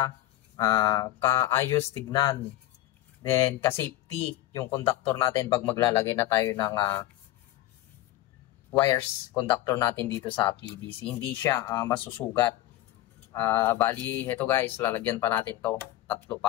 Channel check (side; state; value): right; quieter; 15.0 dB